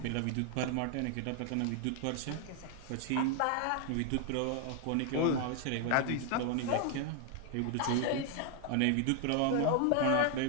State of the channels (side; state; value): both; different; correlation 0.00